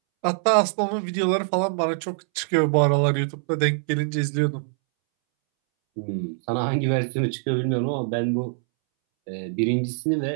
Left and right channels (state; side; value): silent; left; 63 dB below the other